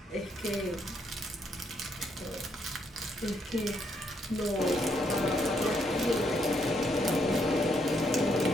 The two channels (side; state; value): both; normal; correlation 0.74